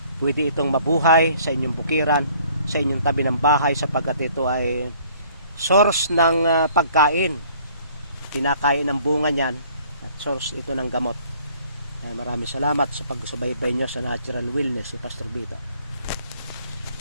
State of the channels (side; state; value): both; inverted; correlation -0.57